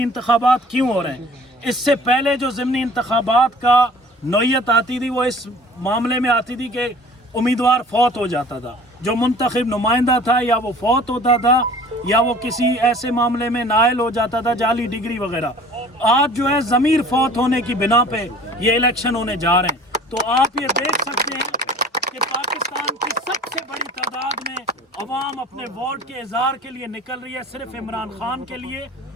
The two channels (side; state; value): both; normal; correlation 0.47